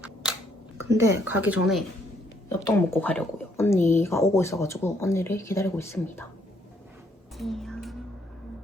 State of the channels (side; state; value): both; normal; correlation 0.70